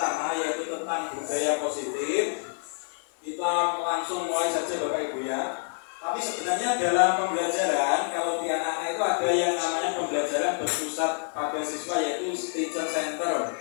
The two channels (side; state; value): right; silent; 60 dB below the other